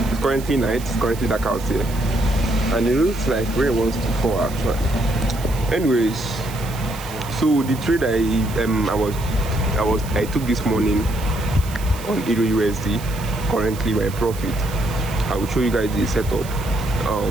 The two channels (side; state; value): right; noise; hiss, 16 dB below the sound